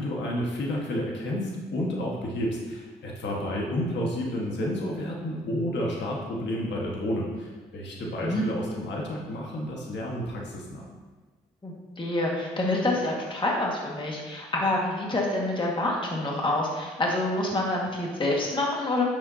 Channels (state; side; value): normal; both; correlation 0.55